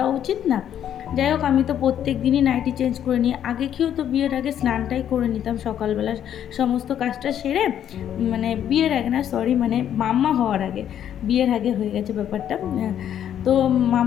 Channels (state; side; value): quieter; right; 10.0 dB